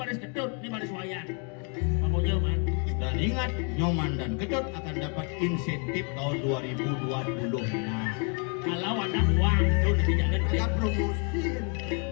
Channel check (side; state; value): right; quieter; 38.4 dB